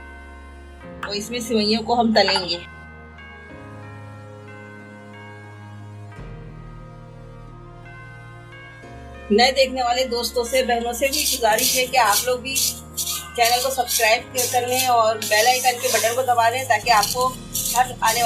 और इसमें सेवइयों को हम तलेंगे। नए देखने वाले दोस्तों से, बहनों से भी गुजारिश है कि आप लोग भी चैनल को सब्सक्राइब कर लें और बेल आइकन के बटन को दबा दें ताकि आपको हर आने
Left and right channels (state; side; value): identical; both; correlation 1.00